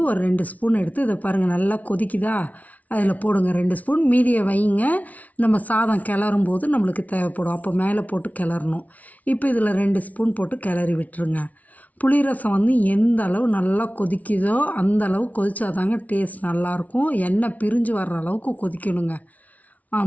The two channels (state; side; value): late; right; 0.071 ms